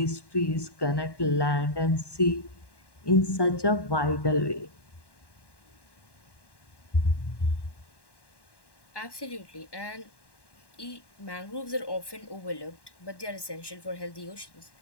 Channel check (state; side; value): late; right; 1.1 ms